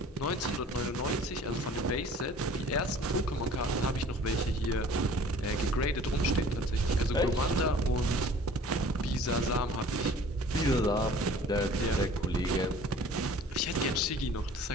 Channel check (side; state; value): both; normal; correlation 0.48